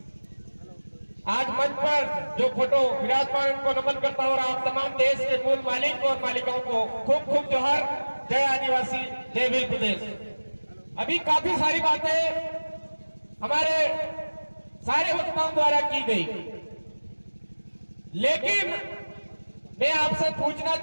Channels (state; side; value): inverted; both; correlation -1.00